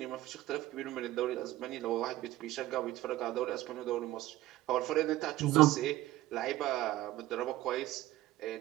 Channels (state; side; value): quieter; left; 15.9 dB